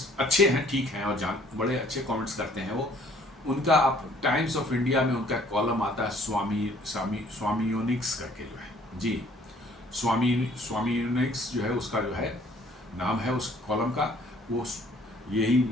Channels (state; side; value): normal; both; correlation 0.58